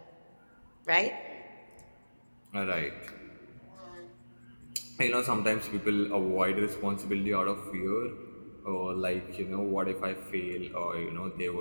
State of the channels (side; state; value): both; inverted; correlation -1.00